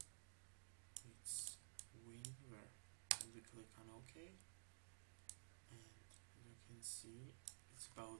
it's Winver, and you click on OK, and as you can see, it's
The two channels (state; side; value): silent; left; digital silence